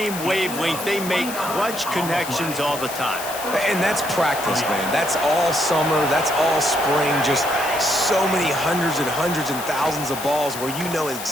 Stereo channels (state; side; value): noise; left; hiss, 9 dB below the sound